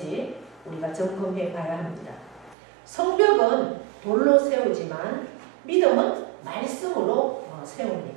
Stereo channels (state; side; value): drops out; left; at 2.6 s